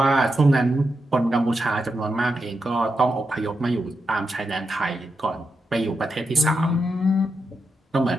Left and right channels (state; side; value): normal; both; correlation 0.86